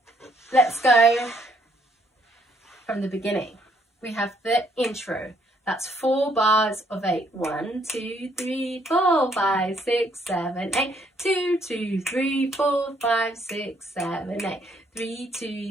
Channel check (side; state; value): both; normal; correlation 0.68